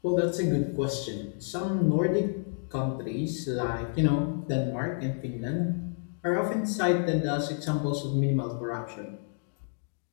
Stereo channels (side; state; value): right; silent; digital silence